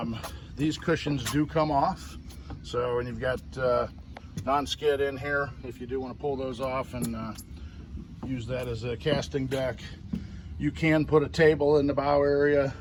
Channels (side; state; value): both; identical; correlation 1.00